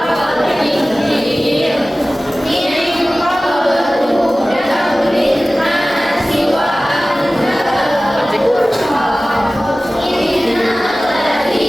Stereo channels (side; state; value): both; normal; correlation 0.97